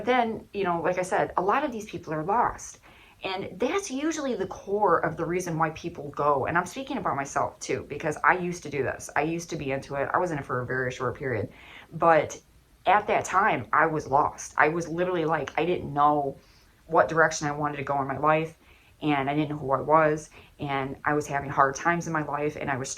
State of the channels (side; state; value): both; identical; correlation 1.00